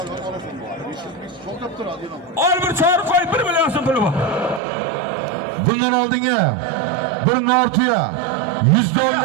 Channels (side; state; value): left; drops out; at 4.6 s